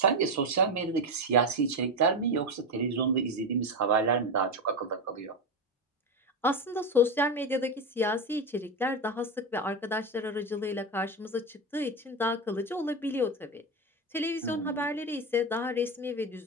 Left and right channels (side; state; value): both; normal; correlation 0.15